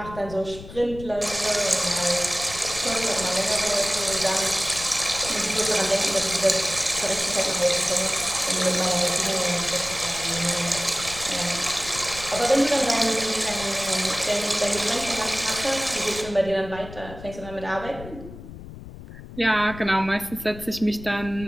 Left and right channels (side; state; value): left; noise; rumble, 14 dB below the sound